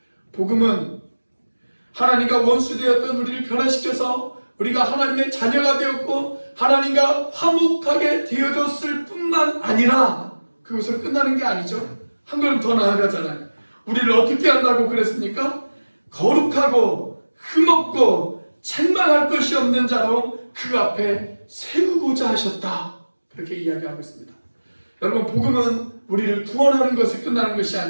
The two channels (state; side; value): inverted; both; correlation -1.00